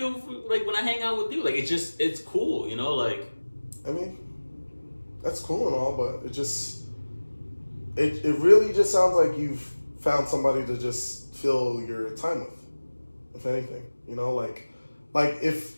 like when I hang out with you. Like, it's cool, you know? Like, I mean, that's cool and all, but it really just sounds like you've found somebody to just fill your time with, if anything. You know,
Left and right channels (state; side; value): inverted; both; correlation -1.00